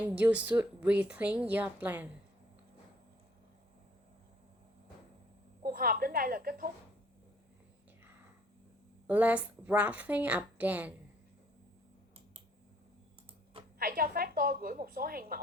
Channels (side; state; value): both; normal; correlation 0.61